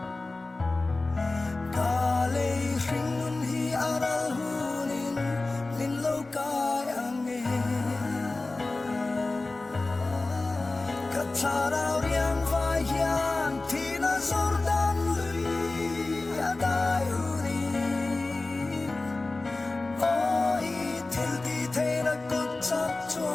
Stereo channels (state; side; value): quieter; right; 3.2 dB